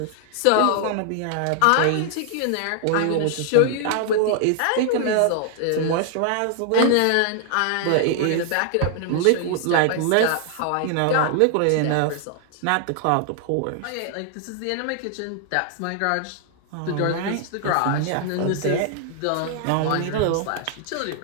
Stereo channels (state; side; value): different; both; correlation 0.00